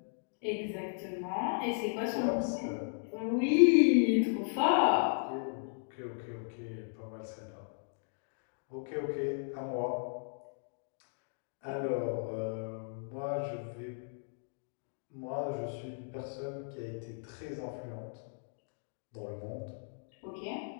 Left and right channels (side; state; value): right; silent; digital silence